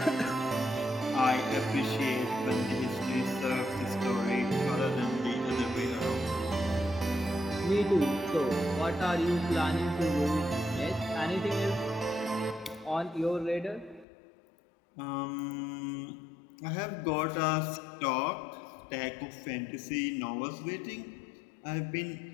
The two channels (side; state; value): right; drops out; at 14.1 s